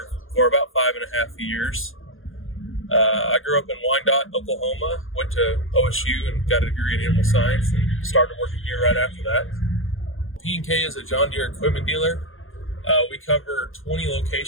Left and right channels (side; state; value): right; late; 0.59 ms